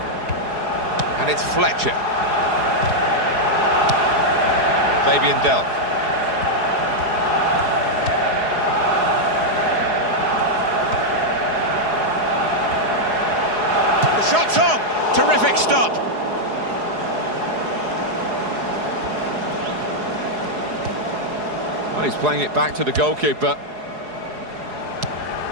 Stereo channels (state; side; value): late; left; 4.8 ms